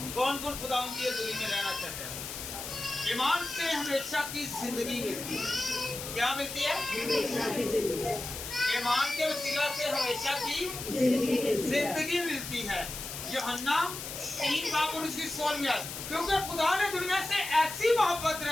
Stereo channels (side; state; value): left; noise; hiss, 8 dB below the sound